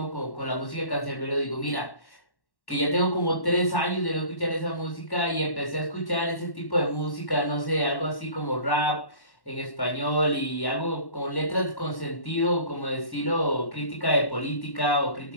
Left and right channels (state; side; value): late; right; 1.1 ms